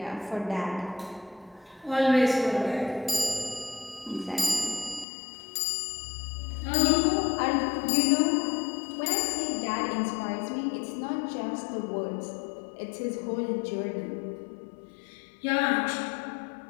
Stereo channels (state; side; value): drops out; right; at 5.1 s